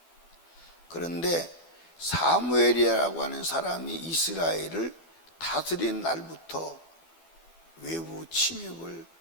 그런데 사무엘이라고 하는 사람이 이스라엘을 다스린 날부터 외부 침입을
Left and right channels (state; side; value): late; right; 12 ms